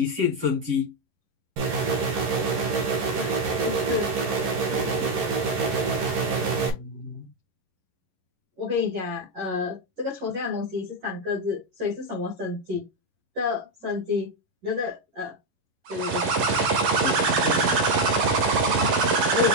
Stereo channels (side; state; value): left; late; 11 ms